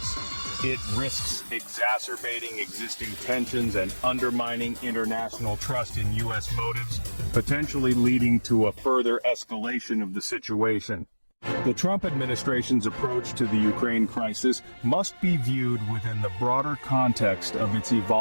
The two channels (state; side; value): inverted; both; correlation -1.00